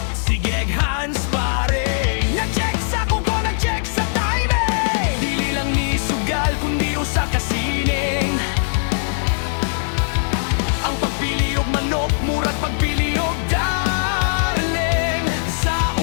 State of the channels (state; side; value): silent; right; 65 dB below the other